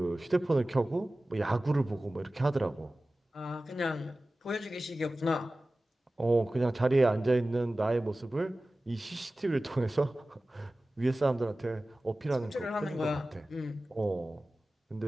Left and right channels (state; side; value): normal; both; correlation 0.96